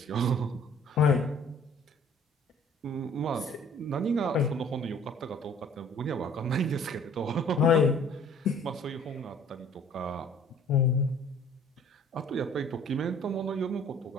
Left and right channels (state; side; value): normal; both; correlation 0.54